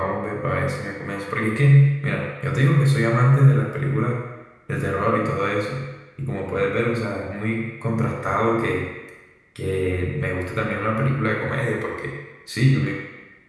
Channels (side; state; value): both; identical; correlation 1.00